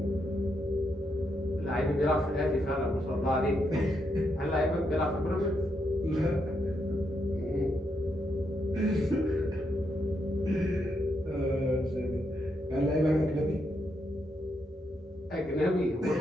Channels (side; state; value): both; normal; correlation 0.80